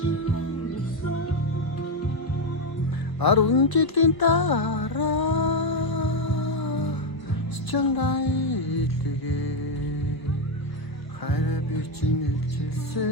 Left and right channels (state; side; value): late; right; 1.0 ms